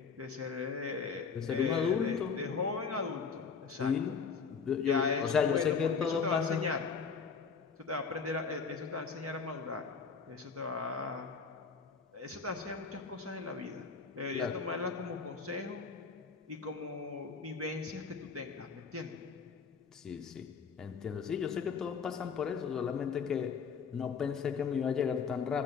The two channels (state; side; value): quieter; right; 5.6 dB